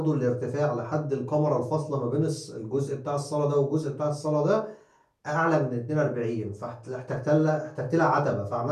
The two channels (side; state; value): both; identical; correlation 1.00